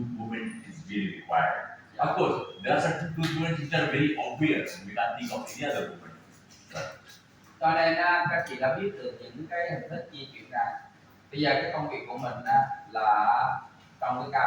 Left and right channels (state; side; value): identical; both; correlation 1.00